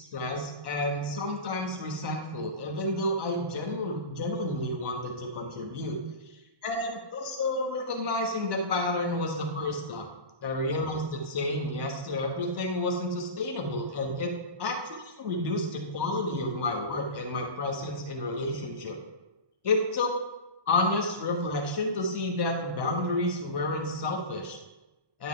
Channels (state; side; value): late; left; 1.1 ms